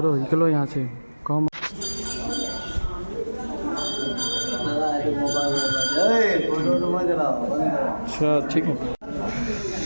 निकलो यहाँ से कम अच्छा ठीक है।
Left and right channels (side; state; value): both; inverted; correlation -1.00